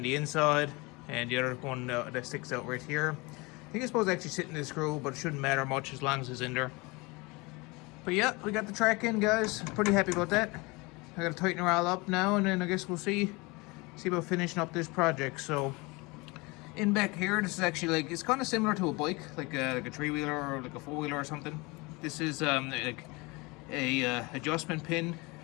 the inside and the other one that sticks out right here. I think it's supposed to actually sit in the screw, but it shouldn't matter much as long as it's in there. But yeah, we got the track in, guys. Pretty happy about that. I gotta tighten her all up now, and then I guess we'll see about finishing up this project. So in back here, this is actually like, it's kind of similar to a bike, like a 3-wheeler or like a 4-wheeler or something. This is like a adjustment pin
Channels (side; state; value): right; quieter; 25.6 dB